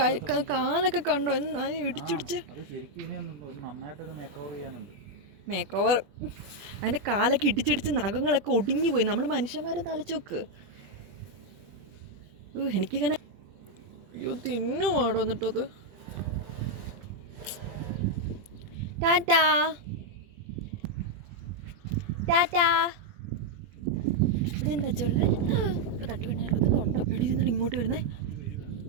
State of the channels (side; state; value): left; late; 20 ms